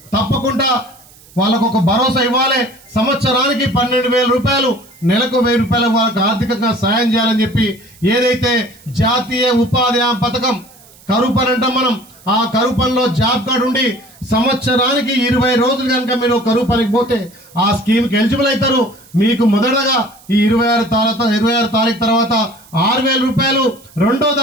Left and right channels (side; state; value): right; noise; hiss, 25 dB below the sound